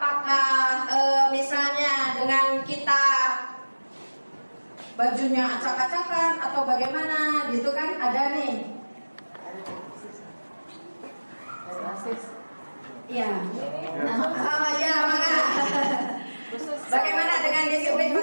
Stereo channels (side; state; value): both; inverted; correlation -1.00